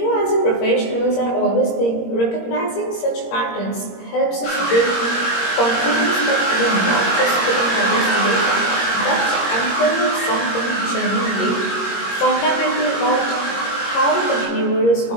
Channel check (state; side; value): late; right; 21 ms